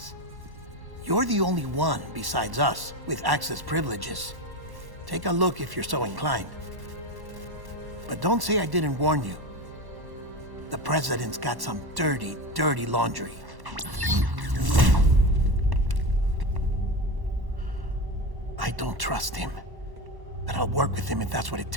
You're the only one besides us with access privileges. Take a look if you're so inclined. But don't say I didn't warn you. The President's got some dirty, dirty laundry. I don't trust him, but I'll work with him if that's what it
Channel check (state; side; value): late; left; 1.1 ms